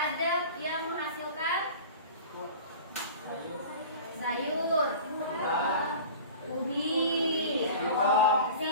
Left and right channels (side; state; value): both; inverted; correlation -0.38